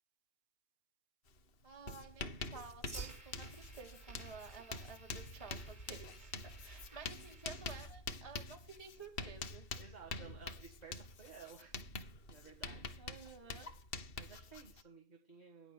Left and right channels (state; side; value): late; right; 2.7 ms